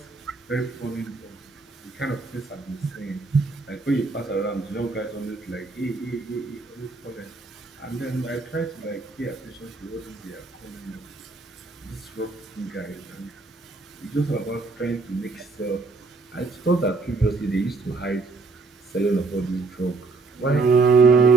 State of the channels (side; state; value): left; quieter; 3.9 dB